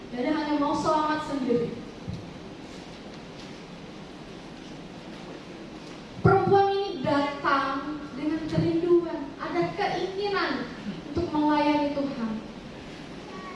Jadi hanya mau selamat sendiri. Perempuan ini datang dengan kerinduan, ada keinginan untuk melayani Tuhan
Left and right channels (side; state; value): both; identical; correlation 1.00